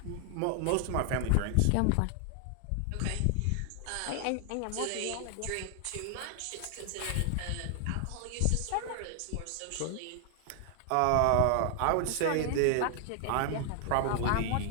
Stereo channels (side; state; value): both; different; correlation 0.00